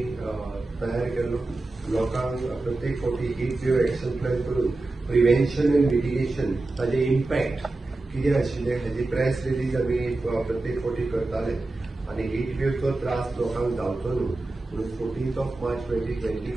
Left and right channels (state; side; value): quieter; left; 3.1 dB